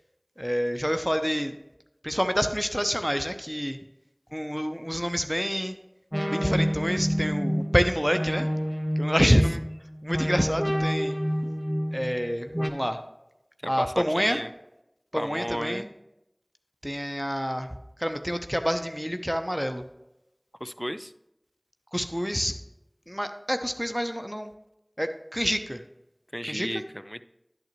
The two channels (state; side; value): identical; both; correlation 1.00